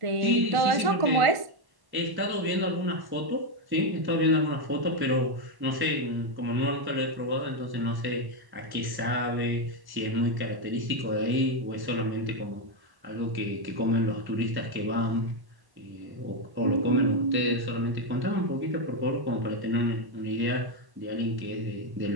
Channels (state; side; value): late; left; 1.1 ms